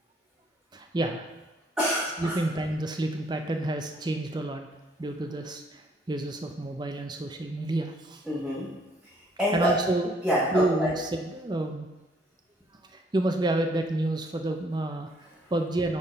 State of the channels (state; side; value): normal; both; correlation 0.65